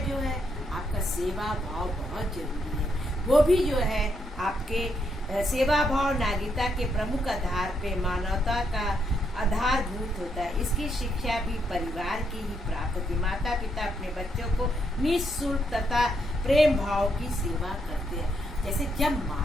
जो है आपका सेवा भाव बहुत जरूरी है। वो भी जो है आपके सेवा भाव नागरिकता के प्रमुख आधार पे मानवता का आधारभूत होता है। इसकी शिक्षा भी परिवार की ही प्राप्त होती है। माता पिता अपने बच्चों को निःशुल्क तथा प्रेम भाव की सेवा करते हैं। जैसे जब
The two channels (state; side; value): normal; both; correlation 0.77